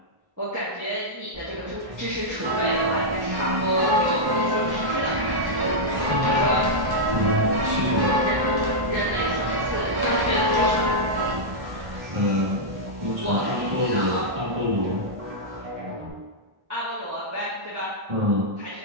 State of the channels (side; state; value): left; late; 1.1 ms